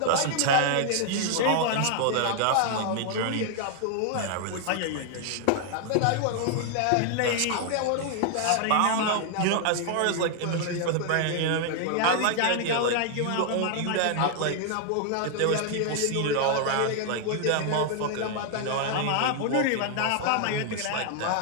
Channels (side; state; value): both; different; correlation 0.00